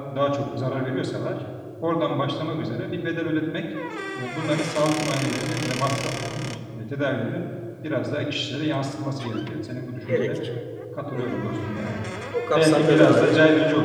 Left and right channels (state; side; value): identical; both; correlation 1.00